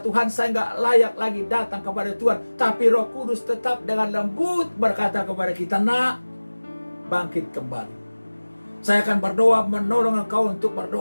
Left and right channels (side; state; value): both; inverted; correlation -1.00